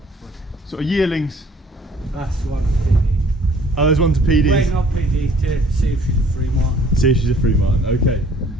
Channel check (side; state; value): both; normal; correlation 0.57